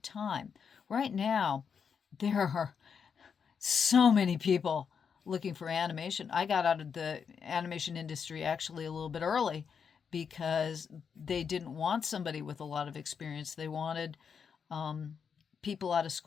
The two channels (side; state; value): right; quieter; 6.6 dB